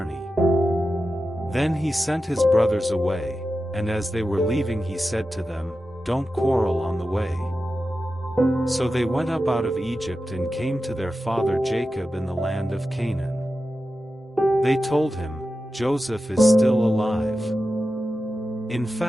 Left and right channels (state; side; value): normal; both; correlation 0.92